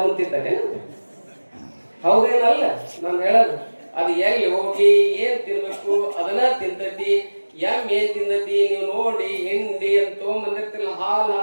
ತಿಂತಾರೆ, ಹೌದೇನಲ್ಲ? ನಾನು ಹೇಳೋದು ಅದು ಎಲ್ಲಿ ಹೋಗಿ ಏನ್ ತಿನ್ಬೇಕು ಅದನ್ನ ತಿಂತತಿ. ಎಮ್ಮೆ ಏನ್ ತಿಂದತಿ ನೀವು ನೋಡಿ, ಹಿಂಡಿ ಅಂತ ತೊಗೊಂಬಂದಿರ್ತಿಲ್ಲ, ಹಾಲು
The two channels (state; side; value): inverted; both; correlation -1.00